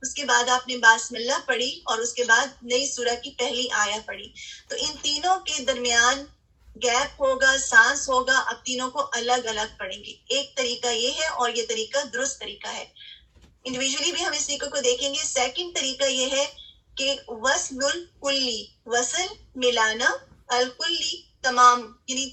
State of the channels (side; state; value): both; identical; correlation 1.00